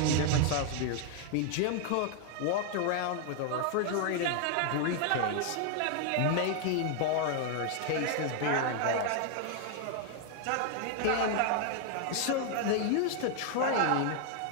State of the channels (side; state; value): both; different; correlation 0.00